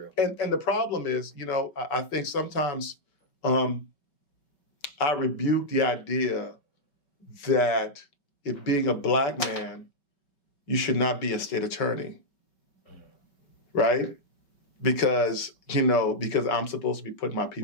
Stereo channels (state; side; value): late; right; 5.3 ms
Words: And the problem is, I think sometimes I rebuke the idea that if being a Black man, you should not be a state attorney, right? Because I'm supposed to be putting my